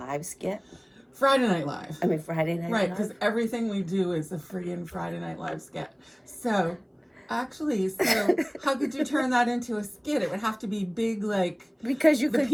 skit? Friday Night Live. I mean, Friday Night Right, Live? because everything we do is a freaking Friday Night Live skit. So, actually, how could you turn that into a skit? It would have to be big, like Because you the could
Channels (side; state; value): both; identical; correlation 1.00